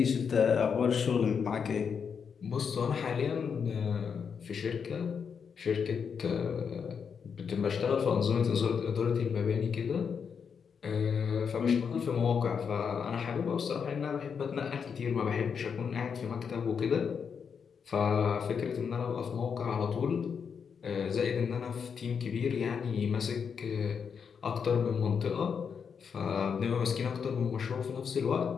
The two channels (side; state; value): right; quieter; 6.6 dB